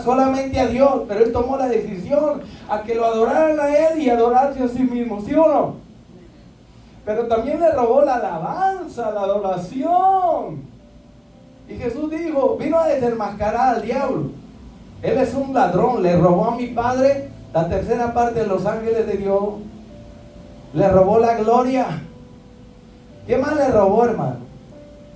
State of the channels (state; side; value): identical; both; correlation 1.00